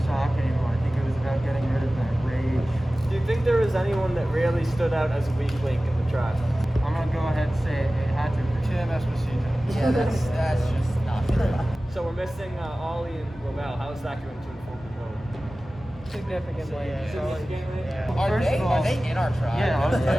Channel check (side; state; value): both; normal; correlation 0.96